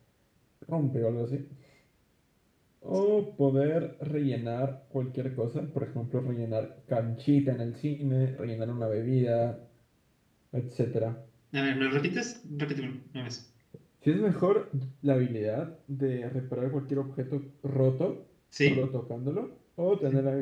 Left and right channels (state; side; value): identical; both; correlation 1.00